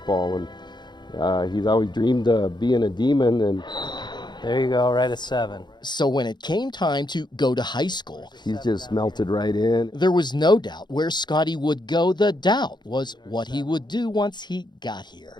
and He's always dreamed of being a Demon, and There you go, right at 7. So when it came time to go to high school, he's just melted right in. there was no doubt where Scotty would go. The doubt was what he would do once he got here.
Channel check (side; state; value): right; late; 0.21 ms